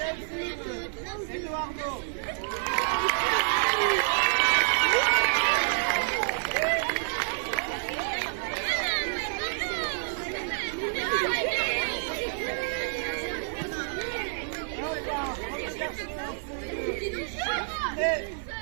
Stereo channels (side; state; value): left; silent; digital silence